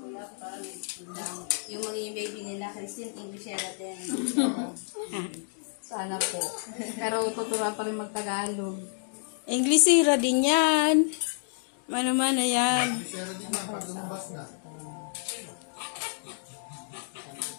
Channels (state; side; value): silent; right; digital silence